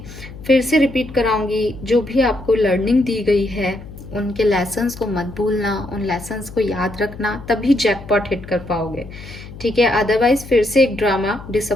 फिर से रिपीट कराऊंगी, जो भी आपको लर्निंग दी गई है उनके लेसन्स को मत भूलना, उन लेसन्स को याद रखना, तभी जैकपॉट हिट कर पाओगे, ठीक है। अदरवाइज फिर से एक ड्रामा,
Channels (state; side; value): noise; left; hum, 15 dB below the sound